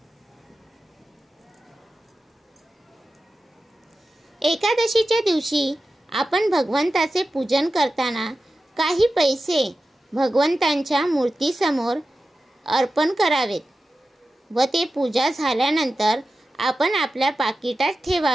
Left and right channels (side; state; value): both; normal; correlation 0.93